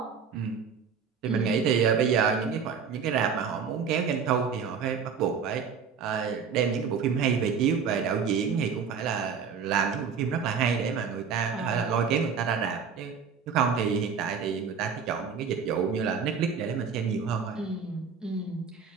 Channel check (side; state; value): left; quieter; 6.3 dB